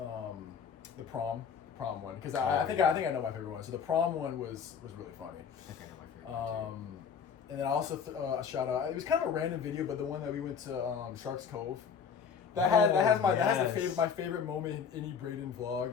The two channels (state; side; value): quieter; right; 6.8 dB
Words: the prom one, because I think I know my favorite one. So the prom one was really funny. I think I know my favorite one too. And then I also shout out. It was kind of a random video, but the one that we went to Sharks Cove. That has my favorite moment in any Braden vlog.